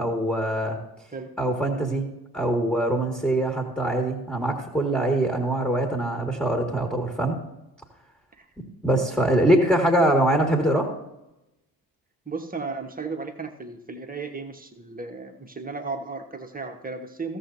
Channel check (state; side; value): normal; both; correlation 0.59